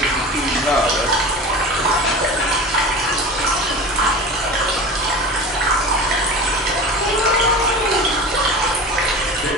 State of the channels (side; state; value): both; normal; correlation 0.33